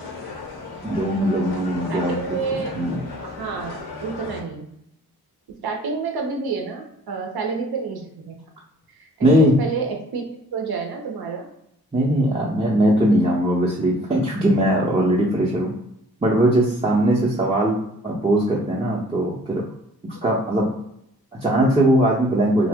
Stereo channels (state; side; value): normal; both; correlation 0.55